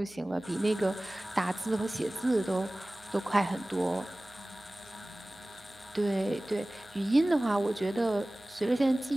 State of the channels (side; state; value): right; noise; hum, 28 dB below the sound